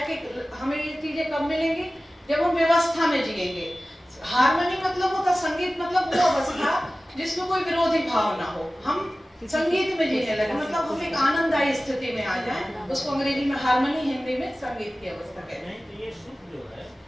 कि हमें ये चीजें कब मिलेंगी? जब हम व्यवस्था में जिएंगे। हार्मनी मतलब होता, संगीत मतलब वो अवस्था जिसमें कोई विरोधी भाव ना हो। हम संगीत में जीने लगे, मतलब हम एक आनंददायी स्थिति में आ जाएं। उसको अंग्रेजी में हार्मनी, हिंदी में संगीत की अवस्था कहते हैं। तो ये सुख जो है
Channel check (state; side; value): normal; both; correlation 0.96